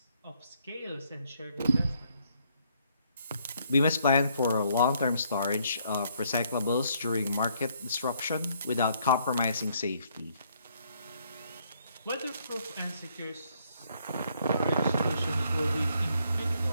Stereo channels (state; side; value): inverted; both; correlation -0.69